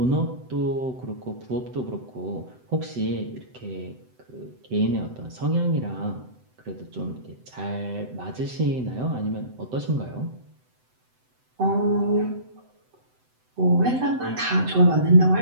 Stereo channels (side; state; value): left; late; 7.9 ms